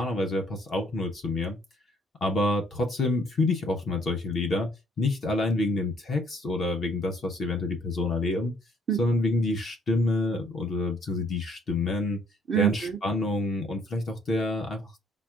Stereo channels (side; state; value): both; normal; correlation 0.63